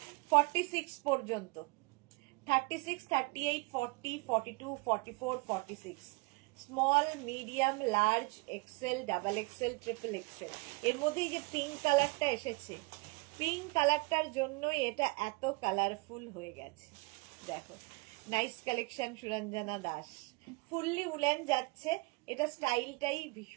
46 পর্যন্ত, 36, 38, 40, 42, 44, 46, small, medium, large, XL, double XL, triple XL. এর মধ্যে যে পিঙ্ক কালারটা এসেছে, পিঙ্ক কালারটার জন্যই এটা এত কালারফুল হয়ে গেছে। দেখো, nice collection, Suranjana Das. Fully woollen যাচ্ছে, এটা স্টাইলটাই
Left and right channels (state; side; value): quieter; left; 27.9 dB